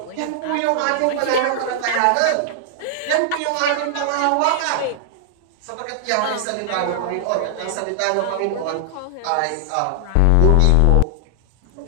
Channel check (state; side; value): different; both; correlation 0.00